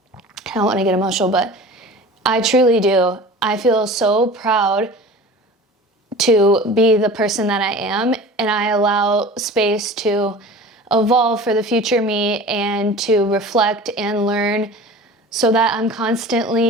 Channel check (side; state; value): both; normal; correlation 0.39